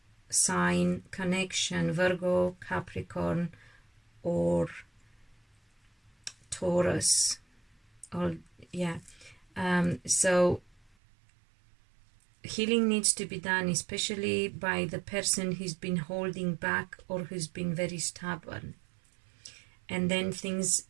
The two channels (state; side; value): drops out; left; at 10.9 s